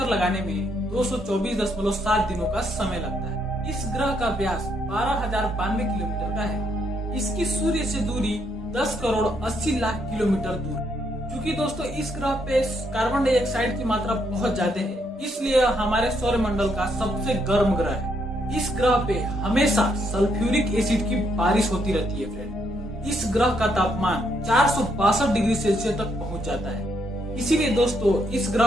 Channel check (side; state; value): both; normal; correlation 0.75